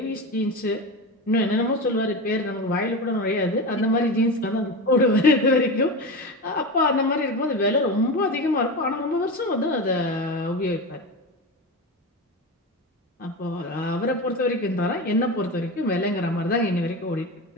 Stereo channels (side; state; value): both; normal; correlation 0.22